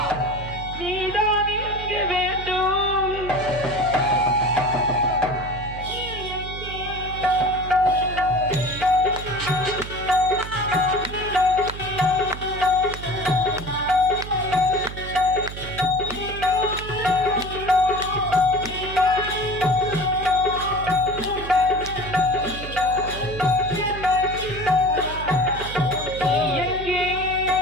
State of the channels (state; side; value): noise; right; hum, 10 dB below the sound